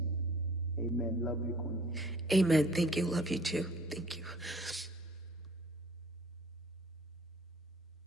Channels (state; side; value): normal; both; correlation 0.54